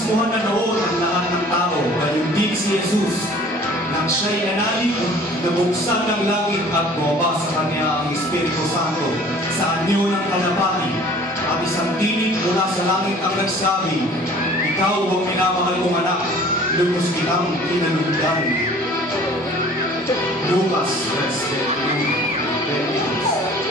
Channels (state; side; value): normal; both; correlation 0.49